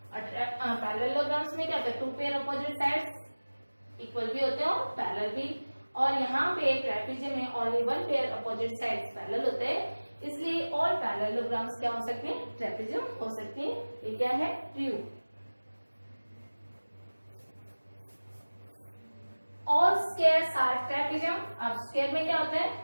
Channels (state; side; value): inverted; both; correlation -1.00